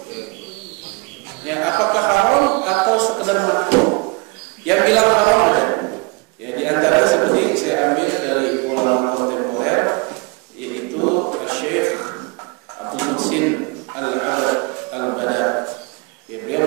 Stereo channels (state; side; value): quieter; left; 29.2 dB